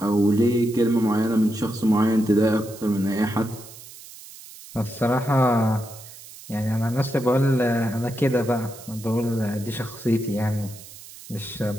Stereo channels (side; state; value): right; noise; hiss, 17 dB below the sound